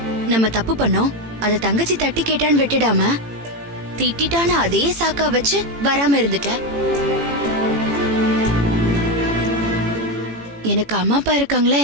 நம்ம தப்பு பண்ணோம், அதை தங்கச்சி தட்டி கேட்டான்னு விட்டுடாம திட்டான அதே சாக்கா வச்சு வராம இருந்துட்ட. எனக்கு அம்மா அப்பா இருக்காங்களா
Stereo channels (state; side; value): late; left; 18 ms